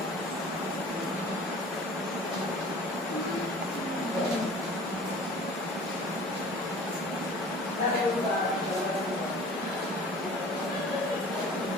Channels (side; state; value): both; normal; correlation 0.45